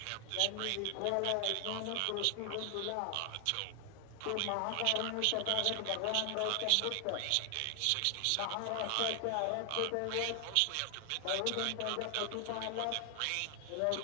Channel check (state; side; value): different; both; correlation 0.00